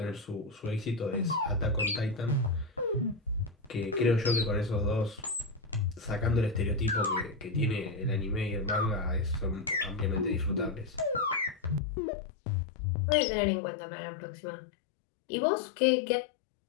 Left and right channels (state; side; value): drops out; right; at 11.8 s